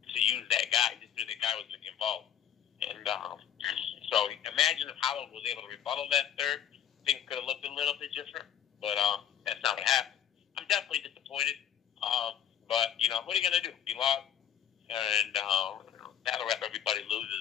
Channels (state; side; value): quieter; right; 9.2 dB